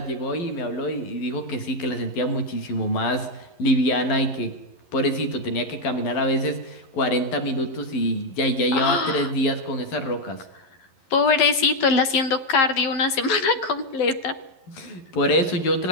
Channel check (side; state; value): right; late; 11 ms